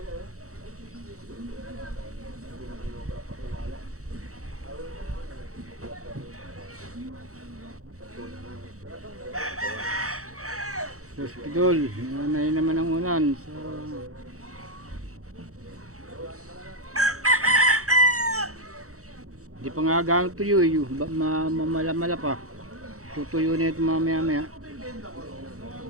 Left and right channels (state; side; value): late; left; 0.65 ms